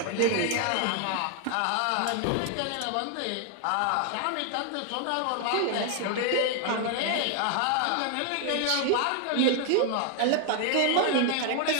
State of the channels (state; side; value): different; both; correlation 0.00